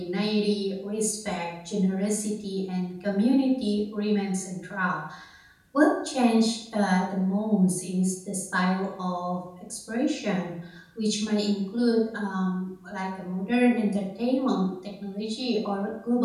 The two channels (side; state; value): both; identical; correlation 1.00